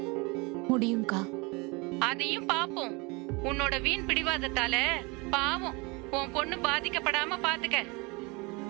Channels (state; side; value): quieter; left; 27.5 dB